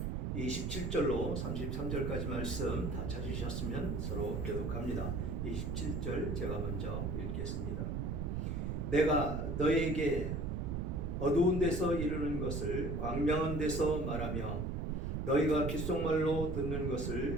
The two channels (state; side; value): noise; right; rumble, 1 dB below the sound